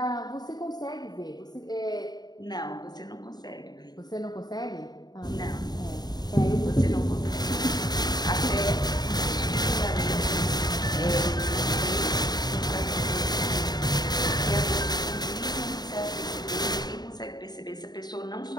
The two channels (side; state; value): right; late; 0.20 ms